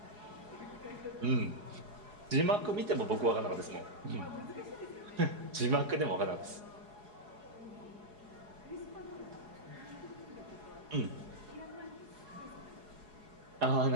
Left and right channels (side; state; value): left; late; 4.8 ms